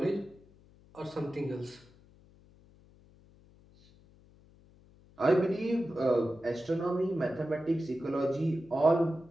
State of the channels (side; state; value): left; noise; hum, 27 dB below the sound